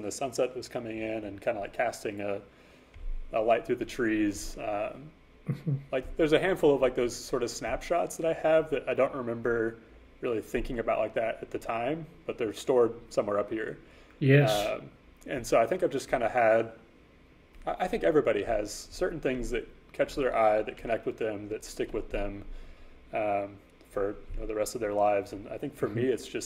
the sunset was coming in, and kind of like casting a light through the trees. Like there's a handful of like those sort of snapshots that I have that I don't remember really thinking about like that at the time, but they're stored somewhere up here. Yes. And so I think I've just kind of had, I think everybody has certain things that catch their eye, that connect with them, that stick with them for the rest of their lives. And I think for me, it's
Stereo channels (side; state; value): both; identical; correlation 1.00